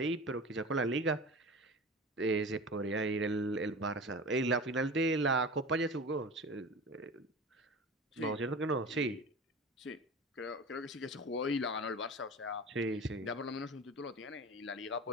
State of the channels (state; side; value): normal; both; correlation 0.34